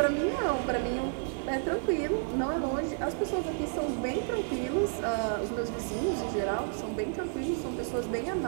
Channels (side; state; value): left; silent; 57 dB below the other